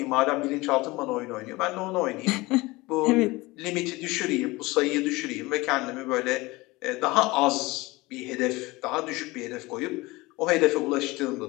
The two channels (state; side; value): quieter; right; 21.8 dB